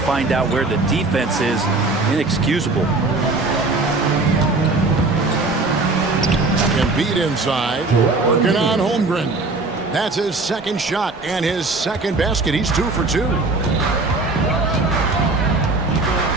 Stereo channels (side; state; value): left; quieter; 3.4 dB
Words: out where the defense is. Inexcusable. Embiid inside, working on Holmgren. That's his second shot and his second basket. He's 2 for 2.